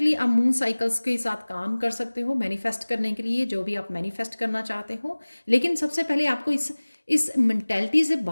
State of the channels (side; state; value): both; inverted; correlation -1.00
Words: आप मून साइकिल्स के साथ काम कर सकते हो मैनिफेस्ट करने के लिए, जो भी आप मैनिफेस्ट करना चाहते हो। लेकिन सबसे पहले आपको इस मेंटेलिटी से